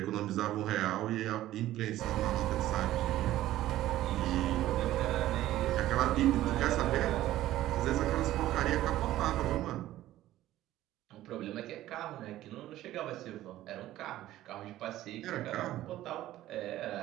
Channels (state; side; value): quieter; left; 14.4 dB